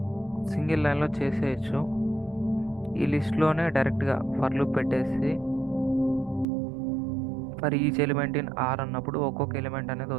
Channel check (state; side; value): drops out; left; at 6.5 s